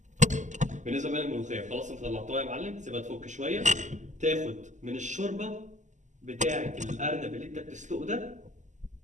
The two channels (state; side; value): late; left; 0.35 ms